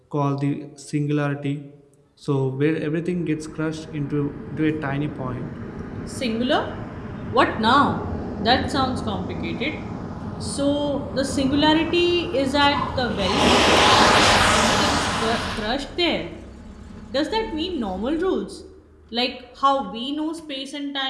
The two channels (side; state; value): both; identical; correlation 1.00